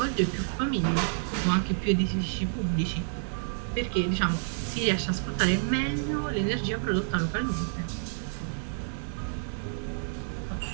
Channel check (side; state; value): left; silent; digital silence